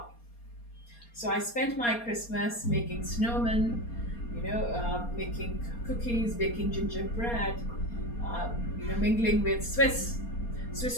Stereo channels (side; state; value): right; late; 4.3 ms